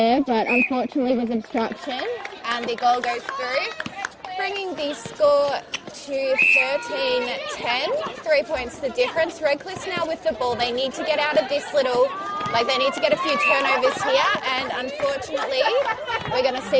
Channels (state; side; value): identical; both; correlation 1.00